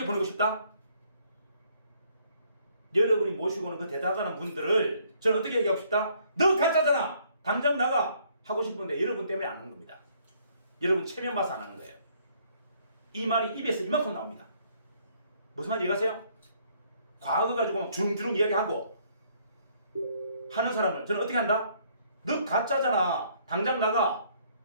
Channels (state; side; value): inverted; both; correlation -0.65